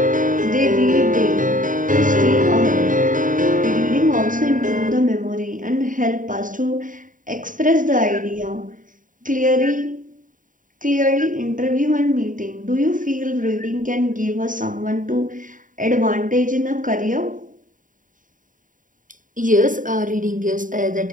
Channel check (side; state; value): left; late; 0.38 ms